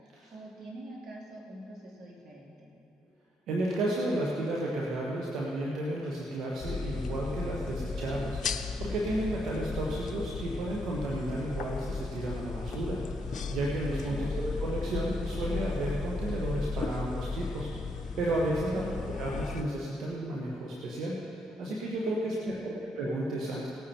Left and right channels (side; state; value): both; normal; correlation 0.76